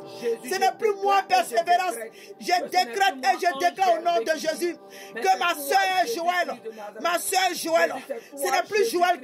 Ce n'est plus moi persévérance. Je décrète et je déclare au nom de Jésus que ma soeur Joël, ce n'est plus Joël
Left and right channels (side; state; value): both; identical; correlation 1.00